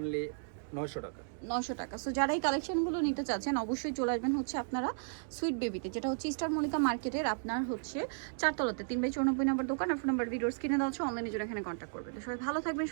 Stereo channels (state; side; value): silent; left; digital silence